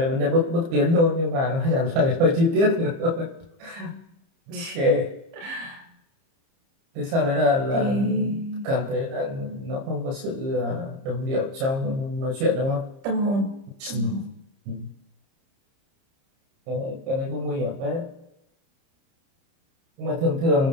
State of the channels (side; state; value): left; late; 30 ms